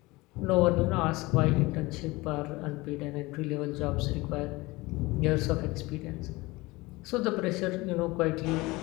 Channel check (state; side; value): quieter; right; 21.9 dB